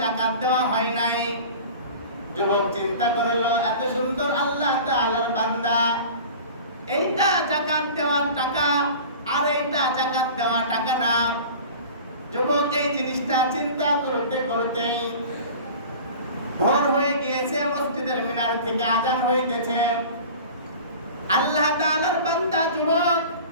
জাকাত দেওয়া হয় নাই। যুবক চিন্তা করলো, এত সুন্দর আল্লাহ তাআলার বান্দা, এইটা জাকাত দেওয়ার টাকা আর এইটা জাকাত দেওয়া টাকা না। যুবক এই জিনিসটা চিন্তা করতে করতেই ভোর হয়ে গিয়েছে। মসজিদের মিনার থেকে আযান হইতেছে। আল্লাহ তাআলার বান্দা যুবক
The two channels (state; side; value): inverted; both; correlation -0.39